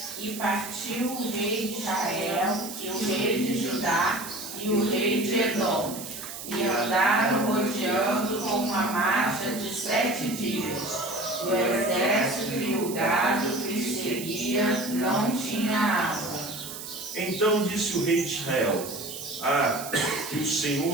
E partiu o rei de Israel, e o rei de Judá, e o rei de Edom, e andaram rodeando com uma marcha de 7 dias. O exército e o gado que lhe seguia não tinha água. Então disse o rei de Israel: que o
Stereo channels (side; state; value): right; noise; hiss, 10 dB below the sound